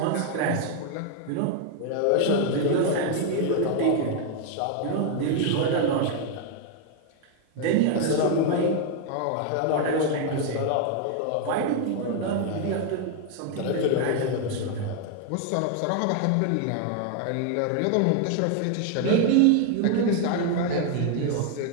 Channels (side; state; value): both; different; correlation 0.00